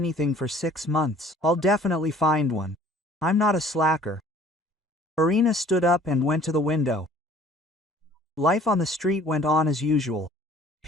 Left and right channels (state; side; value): normal; both; correlation 0.53